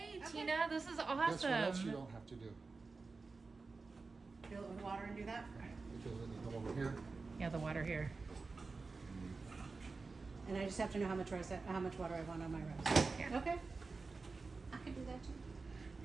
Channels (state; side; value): quieter; left; 4.1 dB